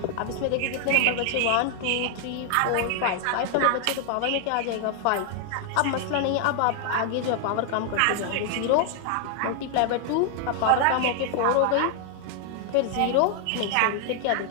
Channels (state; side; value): different; both; correlation 0.00